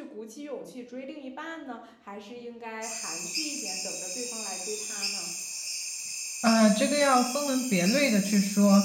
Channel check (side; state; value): both; identical; correlation 1.00